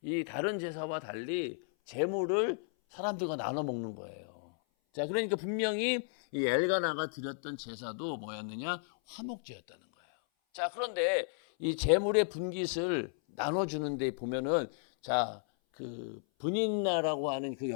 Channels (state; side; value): silent; right; 55 dB below the other